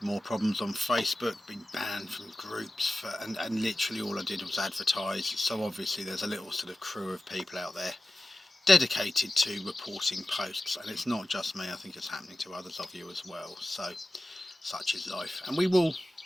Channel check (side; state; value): both; normal; correlation 0.94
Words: More problems on Facebook. Been banned from groups and literally all I did was advertise. So obviously there's a little sort of crew of people out there dedicated to reporting posts, and it's not just me. I think it's happening to others of you as well. So such is life, and we will